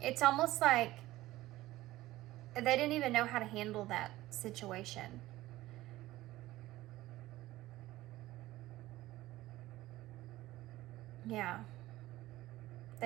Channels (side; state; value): left; quieter; 16.7 dB